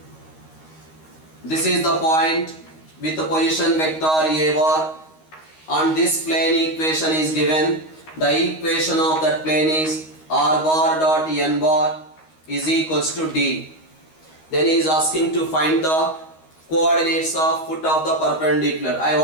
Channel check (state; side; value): late; right; 13 ms